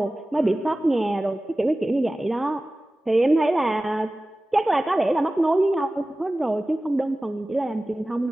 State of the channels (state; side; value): normal; both; correlation 0.97